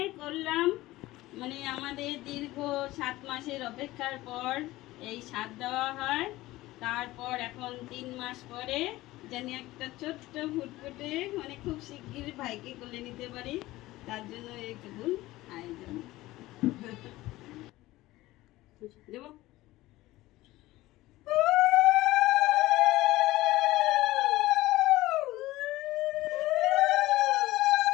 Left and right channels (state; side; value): quieter; right; 17.8 dB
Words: করলাম, মানে আমাদের দীর্ঘ 7 মাসের অপেক্ষার পর এই স্বাদ দেওয়া হয়। তারপর এখন 3 মাস পরে জানি একটা ছোট্ট ফুটফুটে, মানে খুব শিগগির ভাইকে কোলে নিতে পারি, তার জন্য এইটুকু আয়োজন দেব।